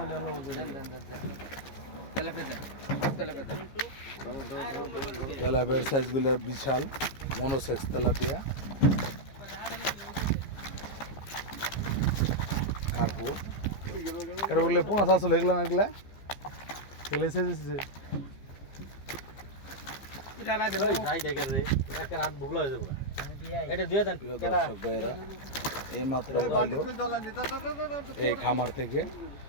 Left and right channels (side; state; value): right; late; 15 ms